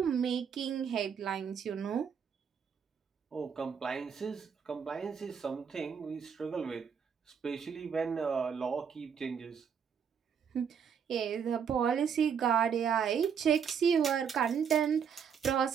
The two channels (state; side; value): quieter; left; 7.2 dB